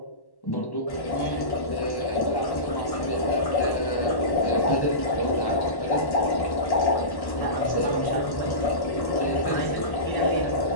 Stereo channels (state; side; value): late; right; 1.1 ms